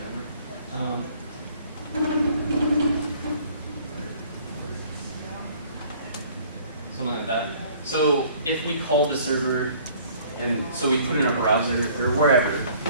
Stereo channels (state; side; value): inverted; both; correlation -0.55